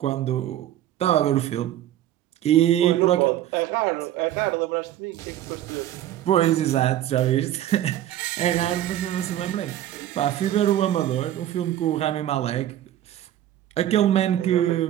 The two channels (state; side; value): quieter; left; 12.4 dB